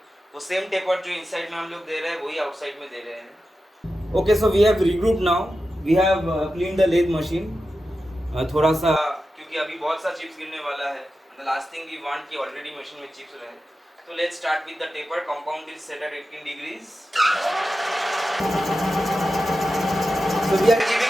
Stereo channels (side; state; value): both; normal; correlation 0.91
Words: वो सेम टेपर जो इनसाइड में हम लोग दे रहे हैं वही आउटसाइड में दे रहे हैं. Okay, so we have regroup now. We have clean the lathe machine. थोड़ा सा क्योंकि अभी बहुत सा चिप्स गिरने वाला है. The last thing we want कि ऑलरेडी मशीन में चिप्स रहे. So let's start with the taper. Compound is set at 18 degrees. So we are